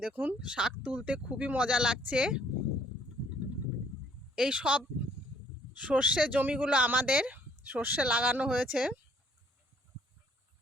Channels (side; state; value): both; normal; correlation 0.62